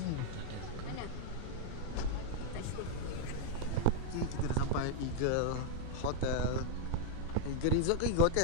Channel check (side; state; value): both; different; correlation 0.00